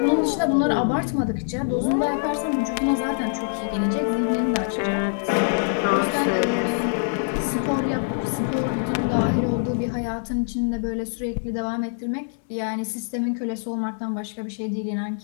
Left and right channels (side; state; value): right; silent; 62 dB below the other